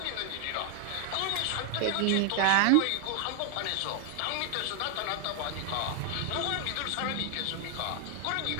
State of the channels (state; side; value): different; both; correlation 0.00